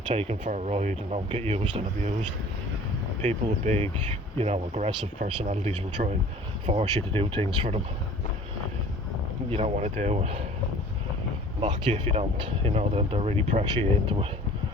taken for a ride and don't get used and abused. People with big, aggressive personalities will try and force you to do things for them you don't want to do, mock you if you don't. They'll really pressure you into it.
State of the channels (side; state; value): both; normal; correlation 0.47